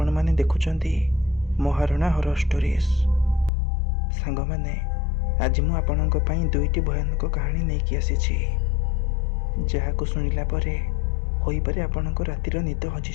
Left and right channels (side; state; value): right; drops out; at 3.5 s